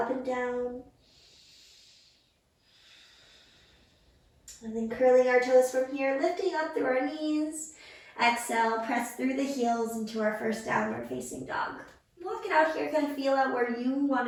and down. And then curling our toes from here, lifting up through our knees. Exhale, press through the heels into our first downward facing dog. Walk it out here, kind of feel out where you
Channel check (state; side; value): identical; both; correlation 1.00